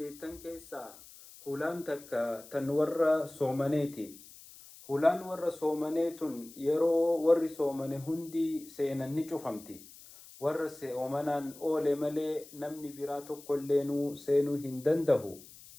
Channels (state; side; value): noise; left; hiss, 19 dB below the sound